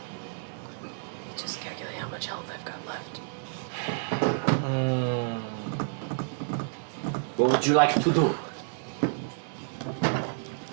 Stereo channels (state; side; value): silent; left; 58 dB below the other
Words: Just calculate how much health I've got left. What would you like to do?